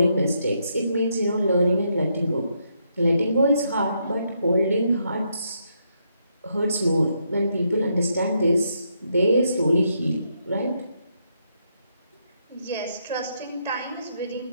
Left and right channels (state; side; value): inverted; both; correlation -0.77